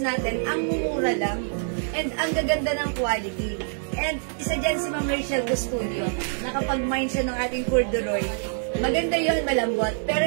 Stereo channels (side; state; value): left; silent; digital silence